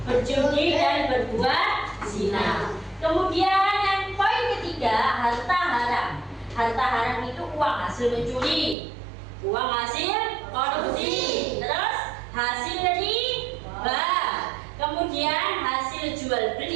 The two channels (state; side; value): drops out; left; at 8.8 s